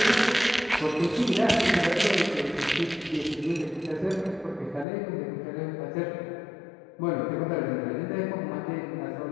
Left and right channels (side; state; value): right; drops out; at 4.9 s